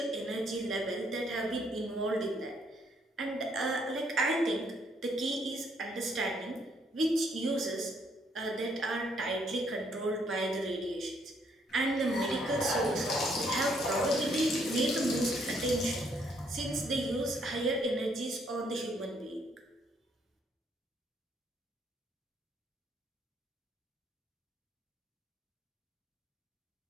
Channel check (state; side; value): normal; both; correlation 0.70